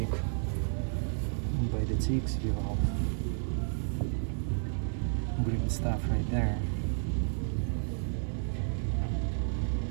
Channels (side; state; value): left; silent; 57 dB below the other